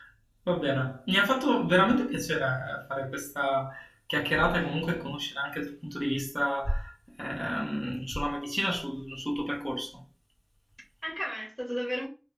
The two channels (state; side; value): identical; both; correlation 1.00